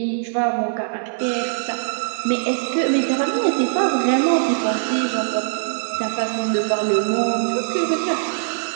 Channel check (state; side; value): silent; left; digital silence